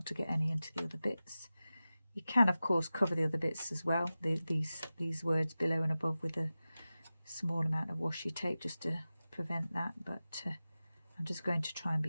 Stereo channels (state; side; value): inverted; both; correlation -0.95